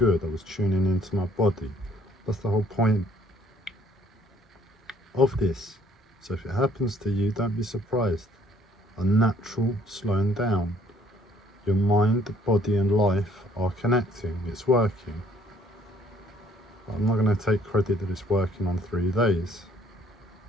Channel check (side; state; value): both; normal; correlation 0.61